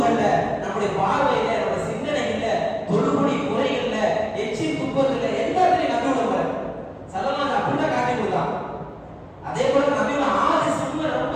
நம்முடைய பார்வையில, நம்முடைய சிந்தனைகள்ல, தொழுகுடி முறைகள்ல, எச்சில் துப்பத்துல எல்லாத்துலயும் நபியோட முறை ஸல்லல்லாஹு அப்படிதான் காட்டி கொடுத்தான். அதே போல நபியோட ஆதி சுன்ன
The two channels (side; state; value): both; identical; correlation 1.00